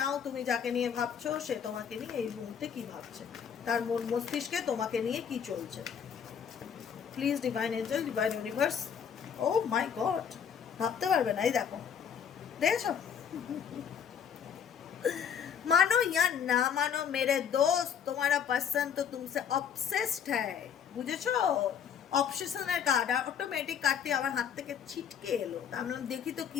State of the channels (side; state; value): right; quieter; 7.8 dB